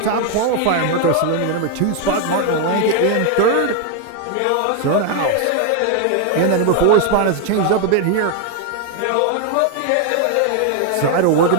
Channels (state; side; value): different; both; correlation 0.01